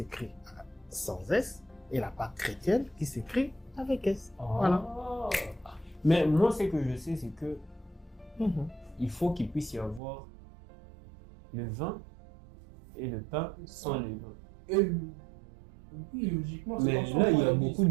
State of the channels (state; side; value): drops out; left; at 10.0 s